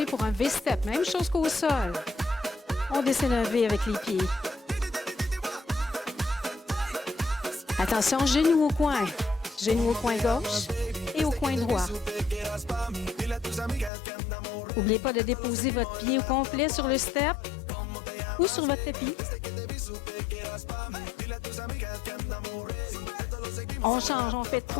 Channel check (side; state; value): right; drops out; at 13.9 s